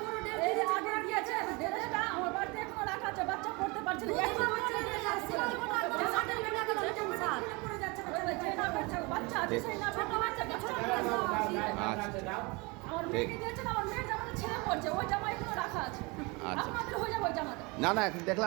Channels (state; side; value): quieter; left; 27.1 dB